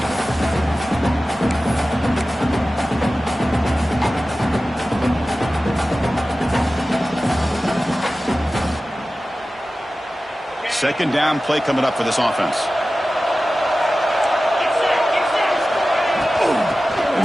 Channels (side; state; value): both; normal; correlation 0.95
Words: Second down play coming up for this offense. And